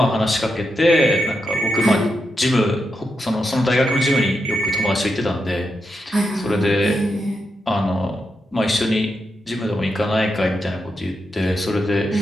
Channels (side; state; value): both; normal; correlation 0.85